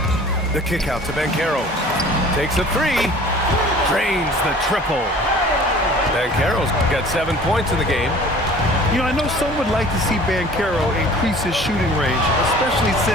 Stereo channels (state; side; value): normal; both; correlation 0.47